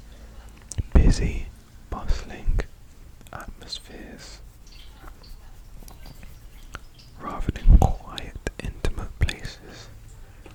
busy, bustling atmospheres rather than quiet, intimate places.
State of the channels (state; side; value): identical; both; correlation 1.00